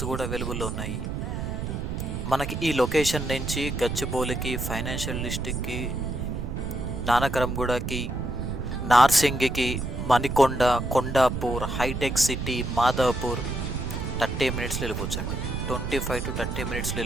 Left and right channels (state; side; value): noise; right; rumble, 4 dB below the sound